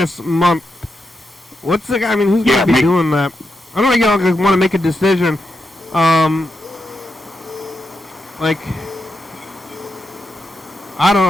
Month. What's the guy? I mean, who's gonna be doing that? I don't think want to make a decision. Like, I don't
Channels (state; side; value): normal; both; correlation 0.85